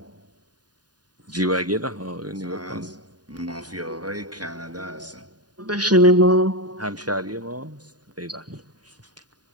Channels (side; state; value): left; late; 0.69 ms